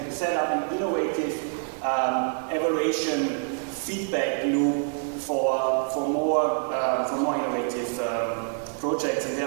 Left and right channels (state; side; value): silent; left; 61 dB below the other